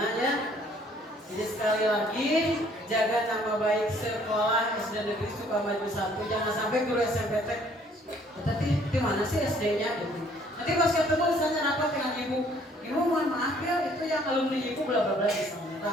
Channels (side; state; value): both; normal; correlation 0.61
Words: ya. Jadi sekali lagi jaga nama baik sekolah SD Negeri Sukamaju 1. Jangan sampai guru SMP tapi di mana sih SD-nya gitu. Nanti pas ketemu misalnya rapat dengan ibu mohon maaf ya itu yang alumni ibu bla bla bla misalnya.